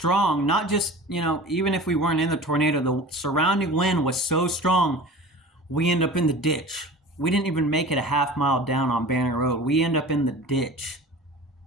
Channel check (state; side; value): normal; both; correlation 0.37